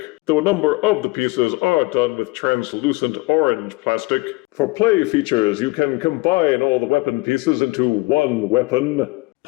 though a number of the pieces are done with translucent orange plastic. For play features, you can combine all the weapon pieces into one weapon,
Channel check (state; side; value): quieter; right; 24.2 dB